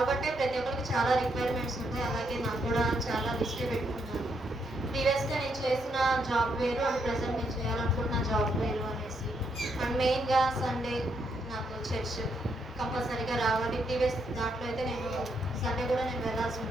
అంటే ప్రతి ఒక్కరికి చాలా రిక్వైర్మెంట్స్ ఉంటాయి. అలాగే నాకు కూడా చాలా లిస్టే పెట్టుకున్నాను. ప్రీవియస్‌గా నేను చేసిన జాబ్ వేరు అండ్ ప్రెజెంట్ నేను చేయాలనుకుంటున్న జాబ్ వేరు అనేసి. అండ్ మెయిన్‌గా సండే నాకు చర్చ్ కంపల్సరీగా రావాలి. ప్రీవియస్ దాంట్లో అయితే నేను సండే కూడా నేను వెళ్ళాల్సి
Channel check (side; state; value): both; normal; correlation 0.77